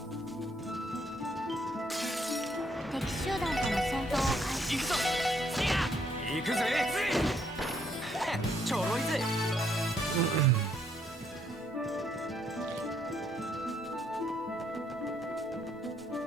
敵集団との戦闘を開始。行くぞ。行くぜ。ちょろいぜ。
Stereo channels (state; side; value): normal; both; correlation 0.70